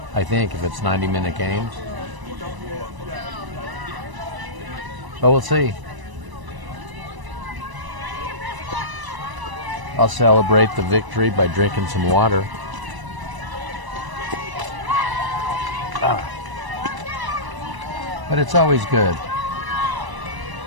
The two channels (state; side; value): late; left; 1.0 ms